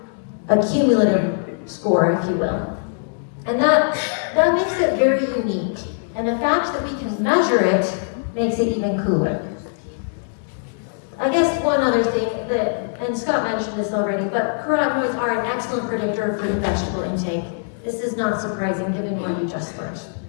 A cumulative score, if you will. And that makes it very unique. And the fact that we can measure it makes it even cooler. I guess one other thing and Scott mentioned this already, but carotenoids are an excellent predictor of fruit and vegetable intake. This is not surprising given what you just learned.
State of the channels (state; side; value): silent; right; digital silence